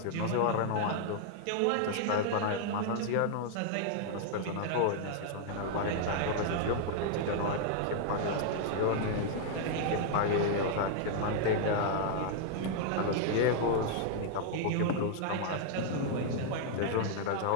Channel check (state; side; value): different; both; correlation 0.00